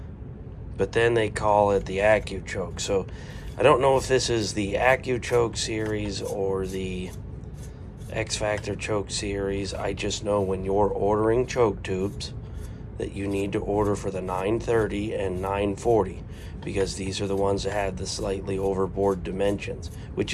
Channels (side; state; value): both; identical; correlation 1.00